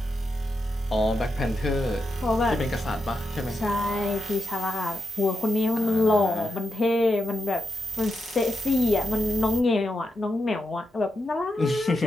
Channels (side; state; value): both; normal; correlation 0.86